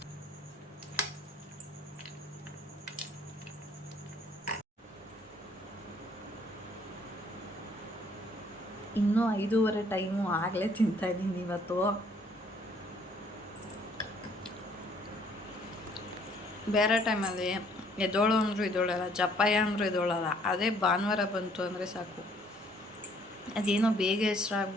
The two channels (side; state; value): both; normal; correlation 0.62